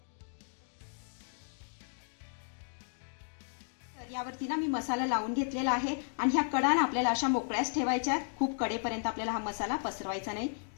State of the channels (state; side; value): silent; right; digital silence